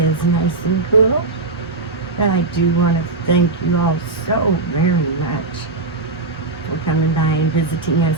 is nice and cool. And I do want to thank you all so very much for coming by and visiting us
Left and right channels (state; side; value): quieter; left; 3.4 dB